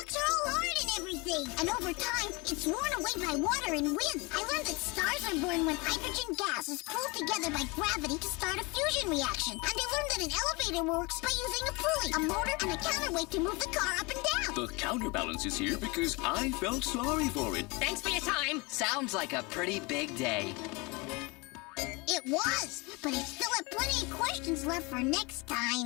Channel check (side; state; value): right; quieter; 26.6 dB